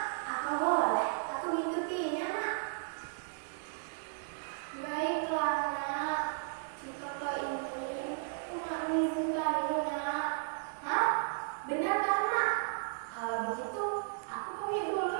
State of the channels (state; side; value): silent; left; digital silence